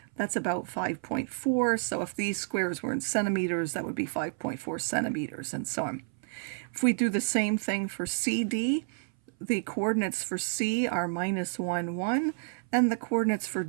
that's about 5.4. So if these squares were in centimeters, that would be 5.4 centimeters, and so on. If we do the same thing for CD, the coordinates for C are -1, 1, and the coordinates for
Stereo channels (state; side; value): silent; left; 58 dB below the other